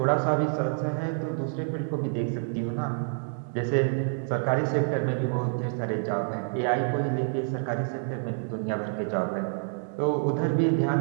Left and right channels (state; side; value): silent; left; digital silence